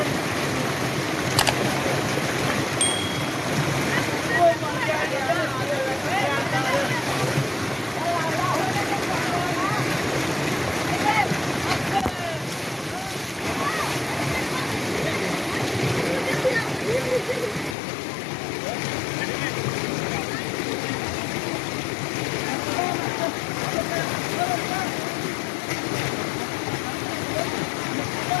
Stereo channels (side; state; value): right; drops out; at 17.8 s